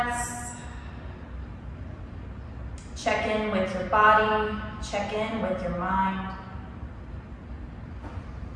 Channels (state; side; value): identical; both; correlation 1.00